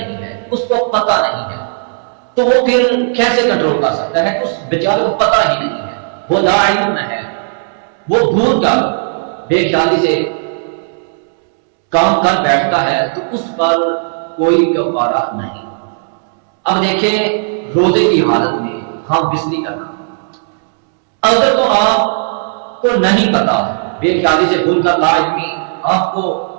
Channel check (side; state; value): left; silent; digital silence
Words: ہے، اس کو پتہ نہیں ہے، تو وہ پھر کیسے کنٹرول کر سکتا ہے؟ اس بیچارے کو پتہ ہی نہیں ہے، وہ لا علم ہے، وہ بھول کر بے خیالی سے کام کر بیٹھتا ہے تو اس پر کوئی کفارہ نہیں۔ اب دیکھیں روزے کی حالت میں ہم بسری کرنا، اگر تو آپ کو نہیں پتا، بے خیالی سے بھول کر لا علمی آپ کو